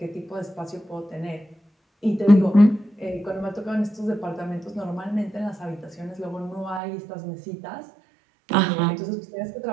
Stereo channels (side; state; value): left; drops out; at 6.8 s